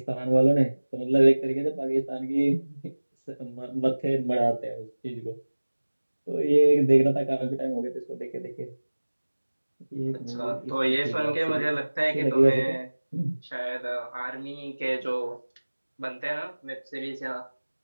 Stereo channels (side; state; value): both; inverted; correlation -1.00